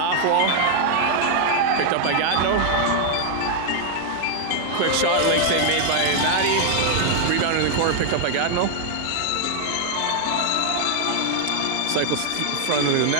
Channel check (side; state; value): both; different; correlation 0.00